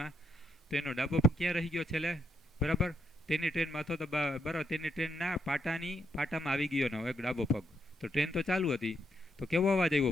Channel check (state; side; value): normal; both; correlation 0.78